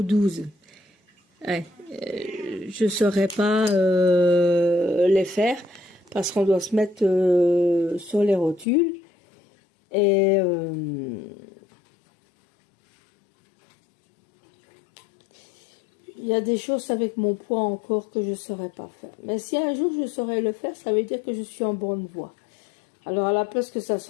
12. Ouais, je saurais pas les faire parce qu'on doit se mettre sur les rotules, et il y a des choses avec mon poids encore que je ne saurais pas faire. Mais si un jour je saurais le faire, ça veut dire que je suis en bonne voie. Alors à la place que ça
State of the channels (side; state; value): right; drops out; at 8.7 s